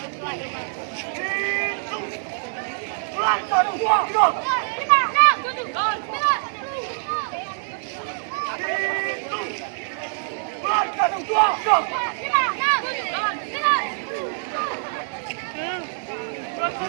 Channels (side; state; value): left; silent; digital silence